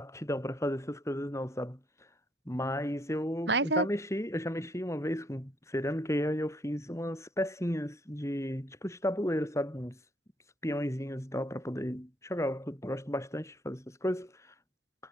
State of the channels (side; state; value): both; normal; correlation 0.68